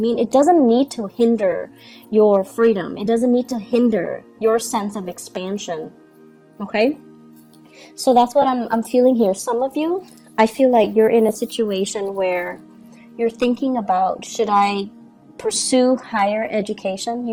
It doesn't need to hinder your freedom. It doesn't need to hinder your sense of expansion. Okay? So that's what I'm feeling here. Some of you, I feel like you're in a situation where you're thinking about, should I pursue higher education.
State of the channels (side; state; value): both; identical; correlation 1.00